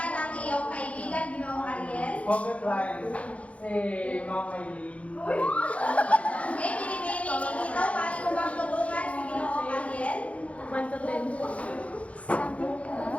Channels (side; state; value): right; late; 0.064 ms